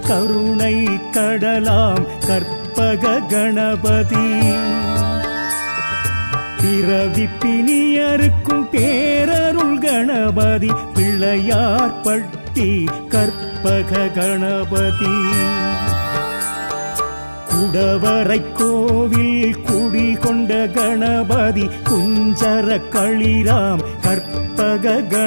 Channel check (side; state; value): both; inverted; correlation -1.00